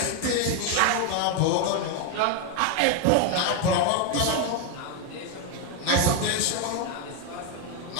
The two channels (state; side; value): different; both; correlation 0.01